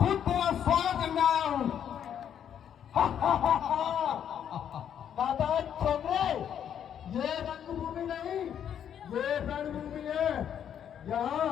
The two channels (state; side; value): quieter; right; 9.1 dB